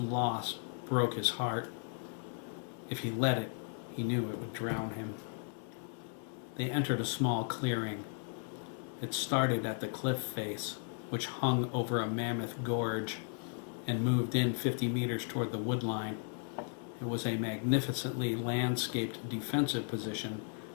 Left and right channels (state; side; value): silent; right; 54 dB below the other